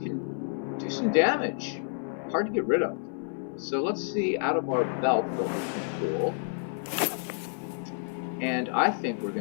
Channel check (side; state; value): right; silent; 58 dB below the other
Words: do some damage. Hard to get rid of. So let's see out of our belt what we can pull. And I think we're